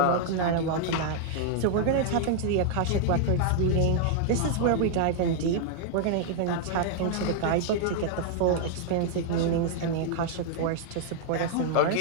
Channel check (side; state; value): both; different; correlation -0.01